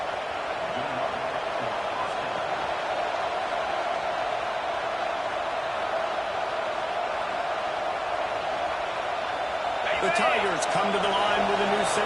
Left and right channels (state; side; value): identical; both; correlation 1.00